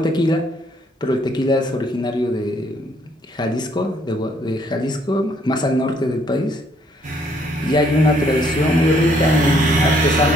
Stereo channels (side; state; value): both; normal; correlation 0.67